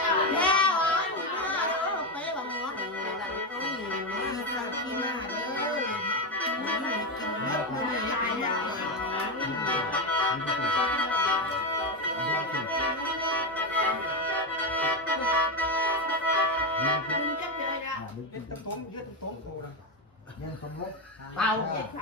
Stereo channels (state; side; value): normal; both; correlation 0.10